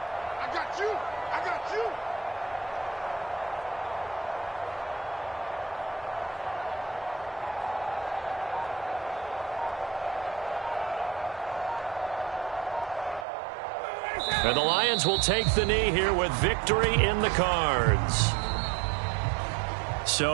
And the Lions will take the knee here with victory in the cards.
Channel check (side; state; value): left; drops out; at 13.2 s